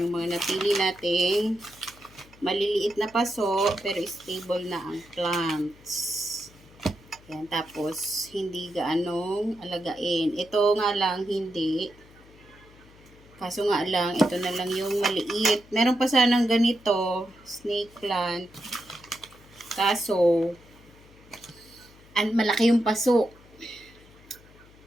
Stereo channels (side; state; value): left; noise; hum, 25 dB below the sound